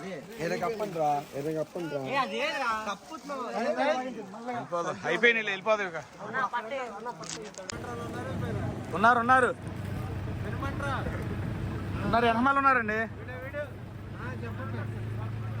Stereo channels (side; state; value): both; identical; correlation 1.00